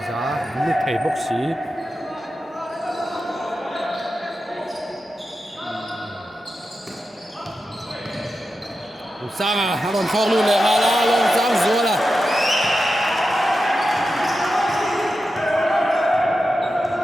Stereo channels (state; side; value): normal; both; correlation 0.91